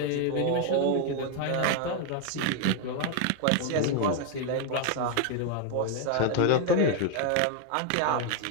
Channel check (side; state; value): both; different; correlation 0.00